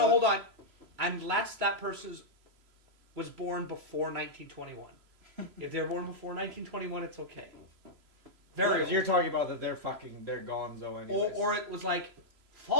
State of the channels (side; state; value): left; late; 3.0 ms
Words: on. Unless that person was born before 1921. If they're born before 1921, it's okay. Very old. You're talking about that they're gonzo anyways. Or it was like,